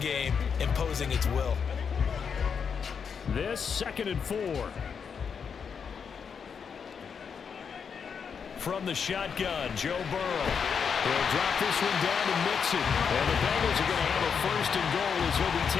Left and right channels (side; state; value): right; quieter; 6.5 dB